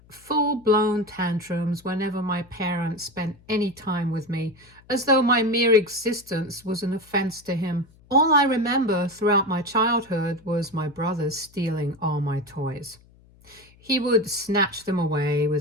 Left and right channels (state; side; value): noise; left; hum, 28 dB below the sound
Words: full-blown tantrums whenever my parents spent any time with me, as though my mere existence was an offense to him. All I remember throughout my childhood was my brother stealing all my toys. He would snatch them away